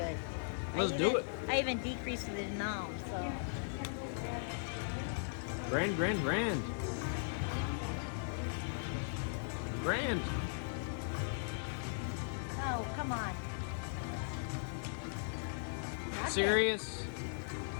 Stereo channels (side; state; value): right; silent; digital silence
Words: Let's do it. I even decreased the amount, so. Grand. Oh, come on. Not Serious?